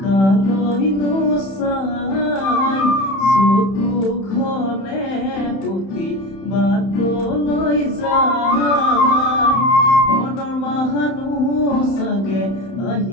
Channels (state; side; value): late; right; 31 ms